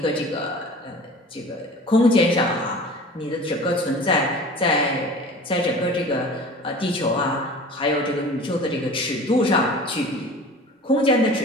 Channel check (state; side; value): normal; both; correlation 0.41